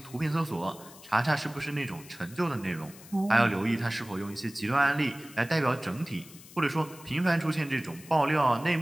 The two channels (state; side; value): noise; left; hiss, 19 dB below the sound